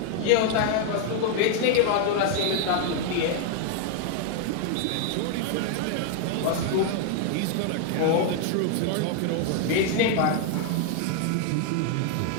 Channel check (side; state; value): both; different; correlation 0.00